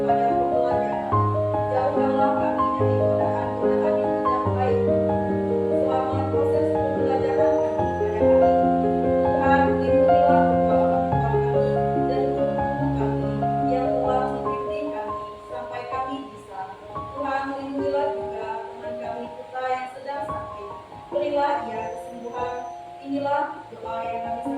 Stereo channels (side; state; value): both; identical; correlation 1.00